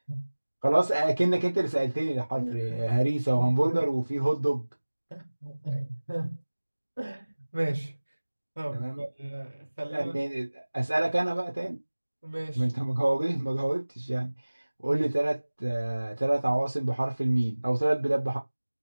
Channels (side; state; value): both; inverted; correlation -1.00